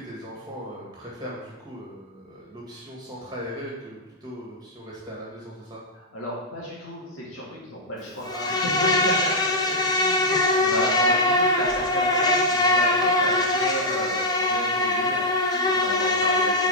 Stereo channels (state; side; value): normal; both; correlation -0.07